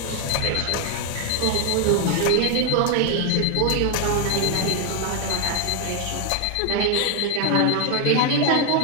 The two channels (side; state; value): both; different; correlation 0.01